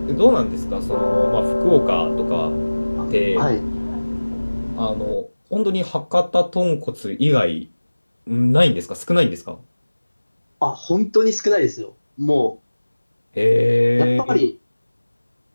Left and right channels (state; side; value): inverted; both; correlation -1.00